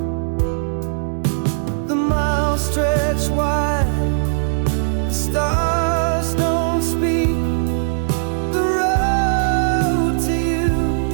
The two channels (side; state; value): left; silent; digital silence